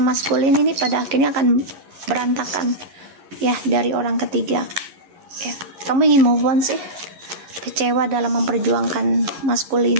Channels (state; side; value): late; left; 11 ms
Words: ini pada akhirnya akan berantakan ya dari orang ketiga ya. Kamu ingin move on sih, kecewa dalam memperjuangkan